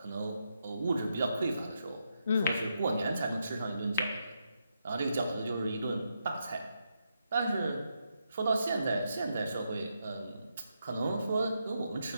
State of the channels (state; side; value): inverted; both; correlation -0.82